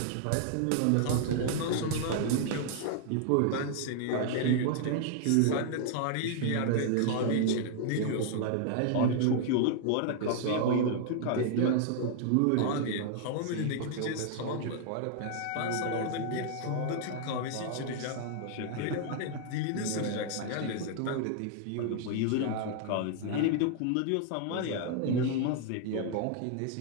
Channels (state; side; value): different; both; correlation 0.00